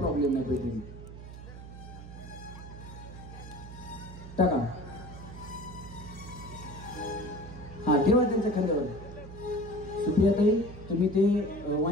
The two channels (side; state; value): right; noise; hum, 13 dB below the sound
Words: नाही. पैठणी टाका, हा ठेवा त्यांच्या खांद्यावर. सुप्रियाताई तुम्ही ते